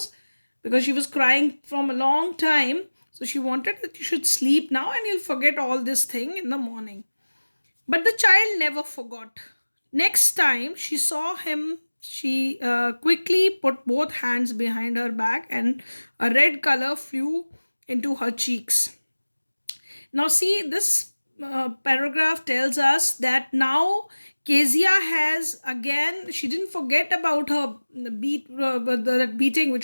because she was crying from a long time. So she wanted that you should sleep now and you'll forget all this thing in the morning. But the child never forgot. Next time she saw him, she quickly put both hands behind her back and a red color flew into her cheeks. Now, see, this paragraph tells us that now Kezia has again, she didn't forget about her that beating which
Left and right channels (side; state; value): both; inverted; correlation -1.00